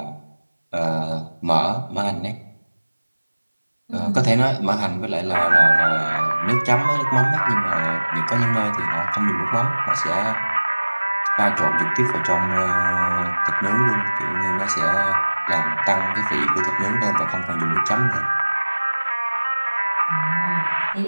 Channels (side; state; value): both; inverted; correlation -1.00